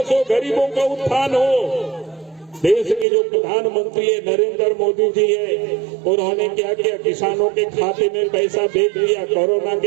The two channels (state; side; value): drops out; left; at 3.1 s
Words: हो, गरीबों का उत्थान हो। देश के जो प्रधानमंत्री है नरेंद्र मोदी जी है, उन्होंने क्या किया? किसानों के खाते में पैसा भेज दिया। कोरोना